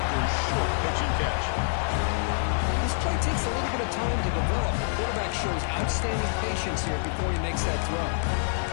after a short pitch and catch. This play takes a little bit of time to develop. The quarterback shows outstanding patience here before he makes that throw.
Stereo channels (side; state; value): right; silent; digital silence